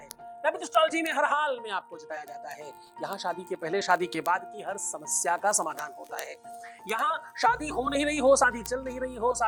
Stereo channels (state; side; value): identical; both; correlation 1.00